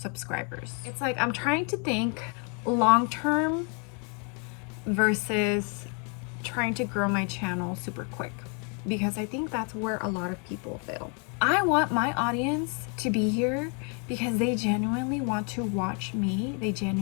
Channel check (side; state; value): right; quieter; 37.2 dB